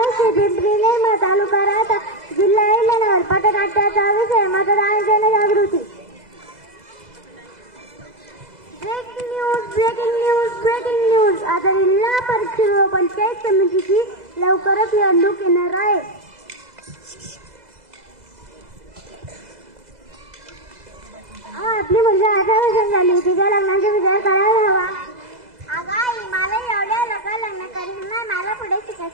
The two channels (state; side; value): late; left; 2.0 ms